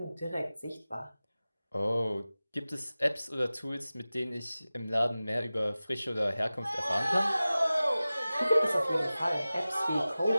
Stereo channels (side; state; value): both; inverted; correlation -0.97